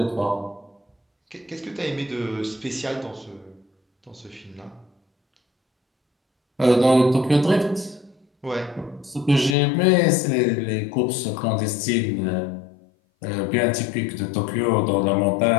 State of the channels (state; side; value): drops out; right; at 9.6 s